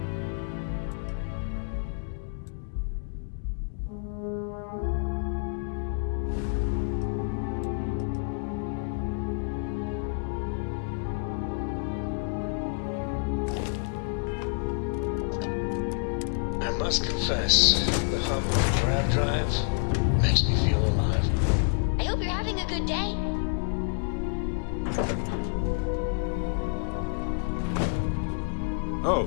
I must confess, the hum of a grab drive makes me feel alive. I hope you're having a good day.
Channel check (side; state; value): right; silent; 59 dB below the other